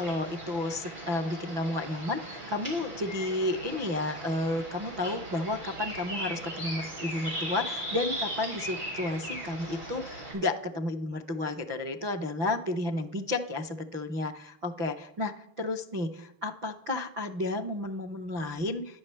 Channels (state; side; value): late; left; 6.0 ms